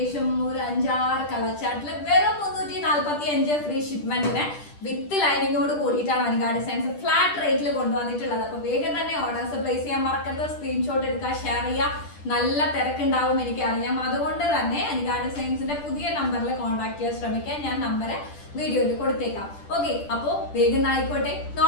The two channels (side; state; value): right; late; 10 ms